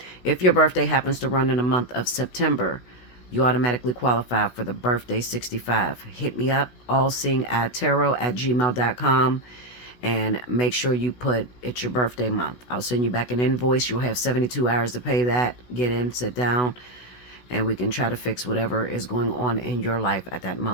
If your birthday happens to run in the month of September, you automatically qualify for the birthday 65. Hit me up, allseeingeyetarot@gmail.com, and make sure you put it's your birthday month. I'll send you back an invoice. You'll have 72 hours to pay that. Get in, sit down, and we can try to fix whatever is going on in your life at that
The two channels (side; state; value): right; late; 16 ms